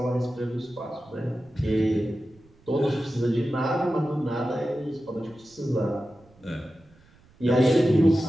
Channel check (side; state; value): right; noise; rumble, 29 dB below the sound